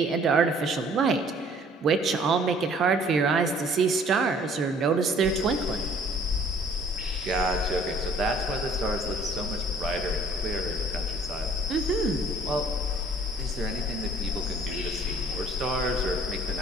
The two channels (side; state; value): both; normal; correlation 0.56